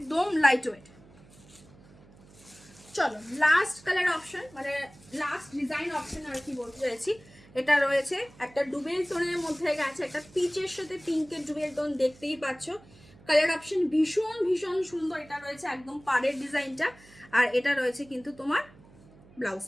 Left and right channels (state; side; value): noise; right; hum, 24 dB below the sound